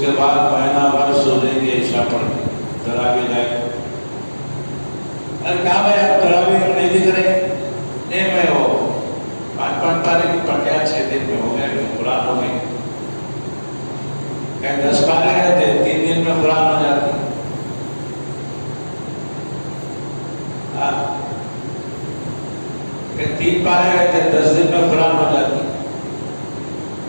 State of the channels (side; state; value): both; inverted; correlation -1.00